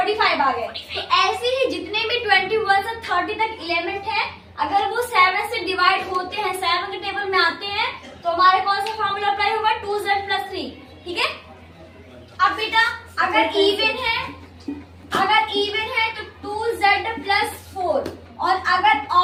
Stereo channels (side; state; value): both; identical; correlation 1.00